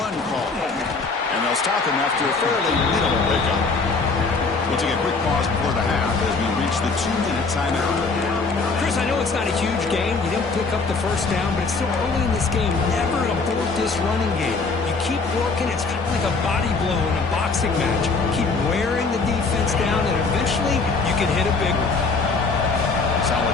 call, and they'll stop him after a fairly minimal pickup. We'll take a quick pause before the half as we reach the 2-minute timeout. Chris, I know it's not a huge game. You didn't pick up the first down, but it's still early in this game. Never abort this running game. You keep working. It's kind of like a body blow in a boxing match. Keep wearing the defense down, and eventually you can hit a big one.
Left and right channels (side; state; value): right; quieter; 4.2 dB